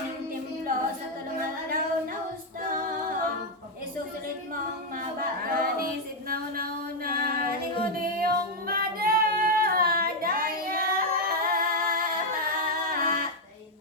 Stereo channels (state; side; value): normal; both; correlation 0.01